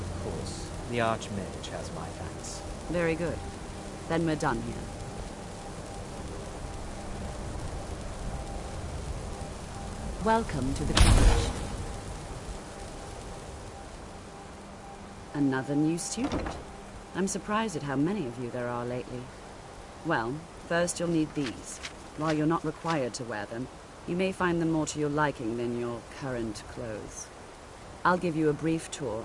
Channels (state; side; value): identical; both; correlation 1.00